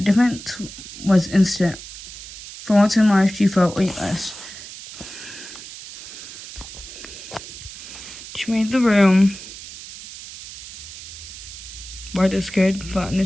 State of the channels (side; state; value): right; noise; hiss, 13 dB below the sound